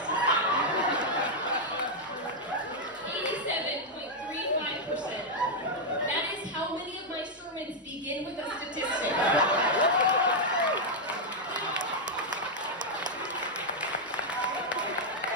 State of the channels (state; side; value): normal; both; correlation -0.01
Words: second. 87.35%. That is how many of my sermons begin with a statistic.